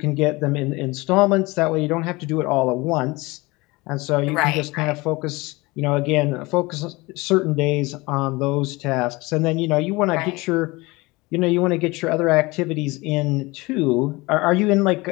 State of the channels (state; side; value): quieter; right; 23.1 dB